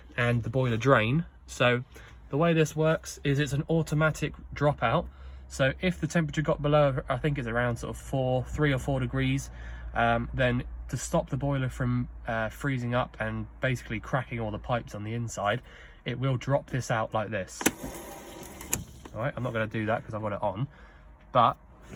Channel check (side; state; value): both; identical; correlation 1.00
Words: and the boiler drain. So the way this works is it's an automatic dropout. So if the temperature got below, I think it's around sort of 3 or 4 degrees, then to stop the boiler from freezing up and basically cracking all the pipes on the inside, it will drop this out like this. All right, I'm not going to do that because I've got it on, but